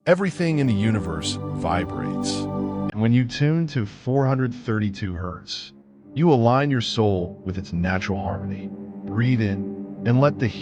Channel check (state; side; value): identical; both; correlation 1.00